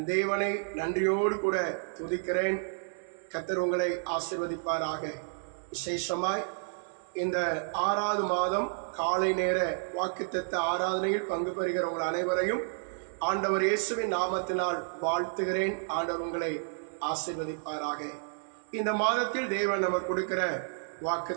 தேவனை நன்றியோடு கூட துதிக்கிறேன். கர்த்தர் உங்களை ஆசீர்வதிப்பாராக. விசேஷமாய் இந்த 6வது மாதம் காலை நேர வாக்குத்தத்த ஆராதனையில் பங்கு பெறுகிற உங்கள் அனைவரையும் ஆண்டவர் இயேசுவின் நாமத்தினால் வாழ்த்துகிறேன். ஆண்டவர் உங்களை ஆசீர்வதிப்பாராக. இந்த மாதத்தில் தேவன் நமக்கு கொடுக்கிற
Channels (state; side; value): silent; left; digital silence